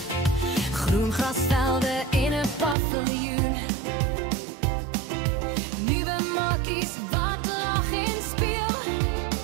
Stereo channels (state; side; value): drops out; left; at 2.8 s